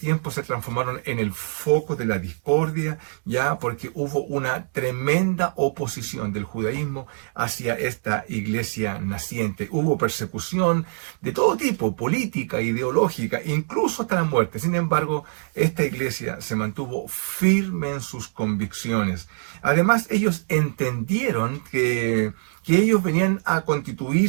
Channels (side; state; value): left; silent; digital silence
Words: se transformaron en el foco de la discordia, ya porque hubo una tremenda oposición del judaísmo hacia esta iglesia naciente. Hubo persecución de todo tipo, política, ideológica, incluso hasta la muerte. Sin embargo, esta iglesia se mantuvo firme en sus convicciones. Además, ellos entendieron que ellos venían a